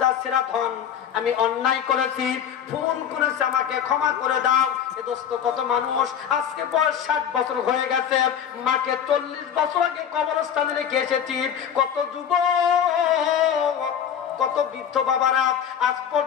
ছেঁড়া ধন, আমি অন্যায় করেছি, ভুল করেছি, আমাকে ক্ষমা করে দাও। এ দোস্ত, কত মানুষ আজকে বয়স 60 বছর হয়ে গেছে, মাকে 40 বছর আগে কবরস্থানে রেখে এসেছি। কত যুবক, কত বৃদ্ধ বাবারা আজ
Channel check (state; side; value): quieter; right; 8.7 dB